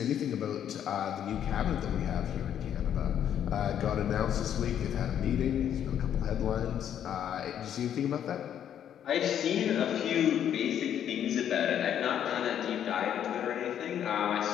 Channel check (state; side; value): quieter; right; 9.7 dB